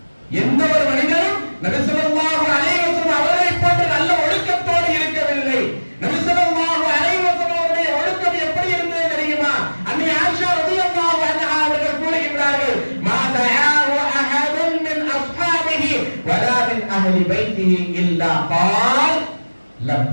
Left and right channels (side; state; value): both; inverted; correlation -1.00